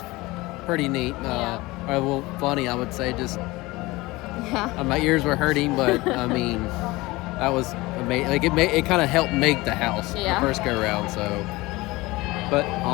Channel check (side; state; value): right; quieter; 21.0 dB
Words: pretty neat. Yeah. Or, well, funny, I would say. Just Yeah. my ears were hurting, but I mean, that was amazing. Like it kind of helped make the house Yeah. the first go around. So, but